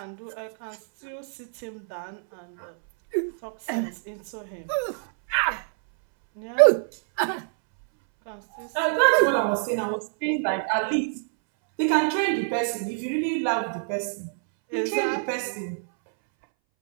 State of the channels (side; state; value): left; silent; 61 dB below the other